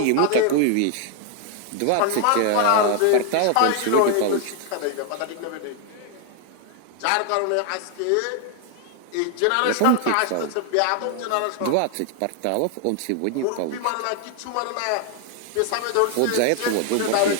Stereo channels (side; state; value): both; different; correlation 0.00